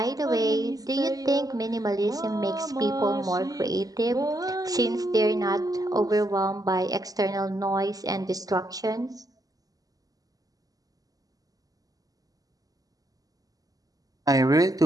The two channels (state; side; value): late; left; 0.17 ms